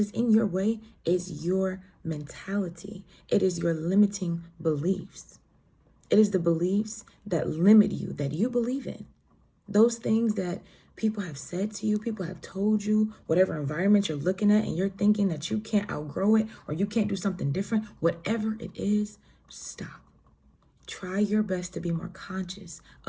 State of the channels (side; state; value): both; identical; correlation 1.00